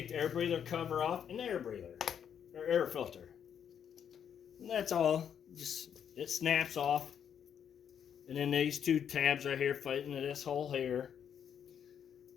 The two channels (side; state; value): right; quieter; 8.4 dB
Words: the air breather cover off and the air breather, or air filter. And that's all. Just, it snaps off. And then these two tabs right here fit into this hole here.